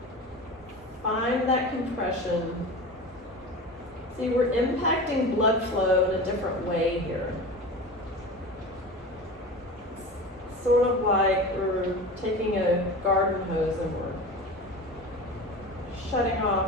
Find that compression. See, we're impacting blood flow in a different way here. It's sort of like we're taking a garden hose and we're shutting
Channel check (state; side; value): normal; both; correlation 0.31